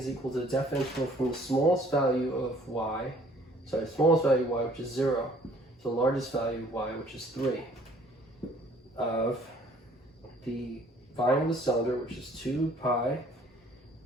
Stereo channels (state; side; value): normal; both; correlation 0.57